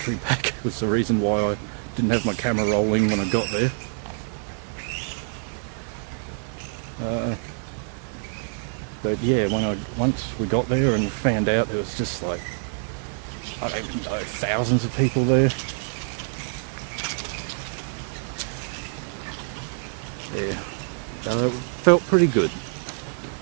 pack was the reason why I didn't have my camera rolling when I got there. But yeah, once we got there and found out there was just like, I don't even know, thousands of people there. Yeah, it felt pretty good.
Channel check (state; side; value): silent; left; 58 dB below the other